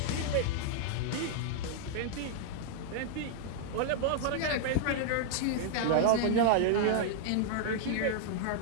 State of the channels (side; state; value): both; different; correlation -0.01